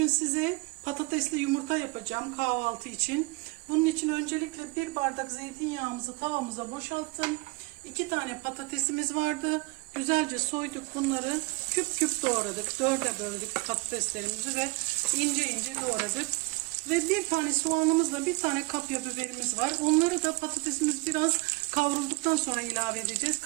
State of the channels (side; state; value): left; quieter; 26.8 dB